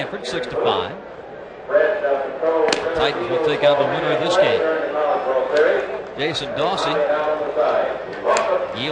6-5. The Titans will take on the winner of this game. Jason Dawsey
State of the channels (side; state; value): both; identical; correlation 1.00